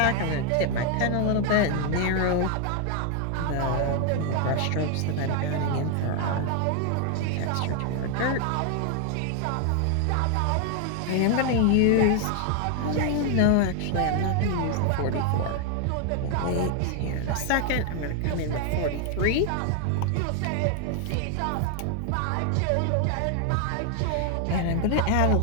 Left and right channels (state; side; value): different; both; correlation 0.00